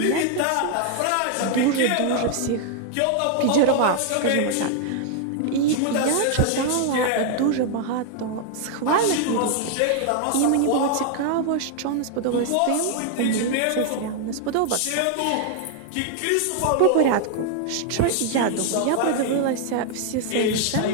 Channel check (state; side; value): different; both; correlation 0.00